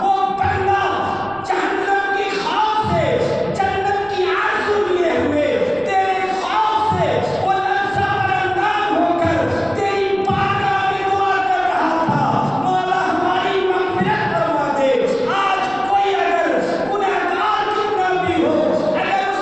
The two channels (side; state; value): right; noise; rumble, 23 dB below the sound